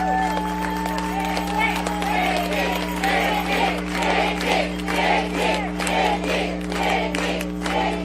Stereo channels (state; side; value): identical; both; correlation 1.00